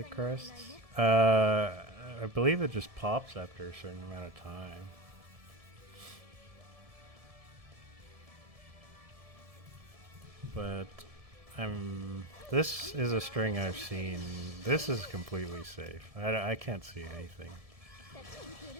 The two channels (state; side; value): late; left; 1.7 ms